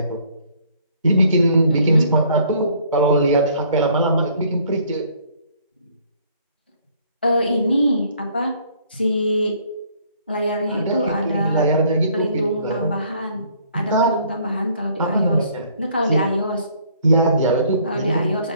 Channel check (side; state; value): both; inverted; correlation -0.61